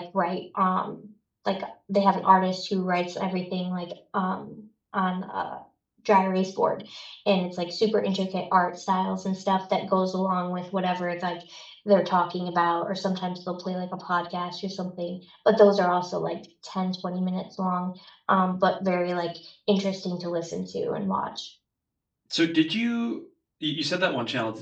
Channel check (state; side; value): identical; both; correlation 1.00